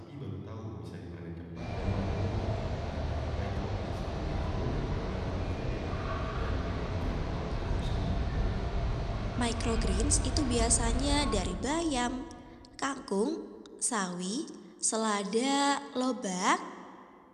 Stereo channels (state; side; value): identical; both; correlation 1.00